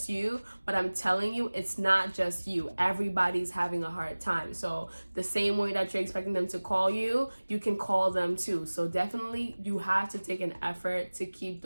you. But I'm telling you, it's not just you. Everybody's having a hard time. So the same way that you're expecting them to call you, you can call them too. So definitely you have to take an effort to keep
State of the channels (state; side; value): inverted; both; correlation -1.00